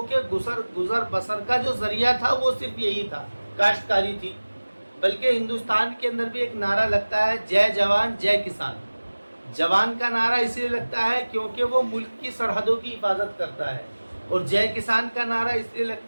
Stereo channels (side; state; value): both; inverted; correlation -1.00